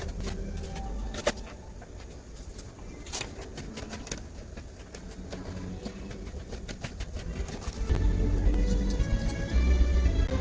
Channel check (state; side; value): identical; both; correlation 1.00